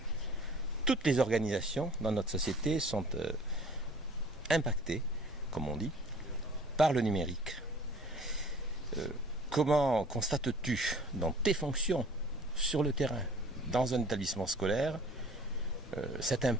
Toutes les organisations dans notre société sont impactées, comme on dit, par le numérique. Comment constates-tu dans tes fonctions sur le terrain, dans un établissement scolaire, cet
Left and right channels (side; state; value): both; normal; correlation 0.50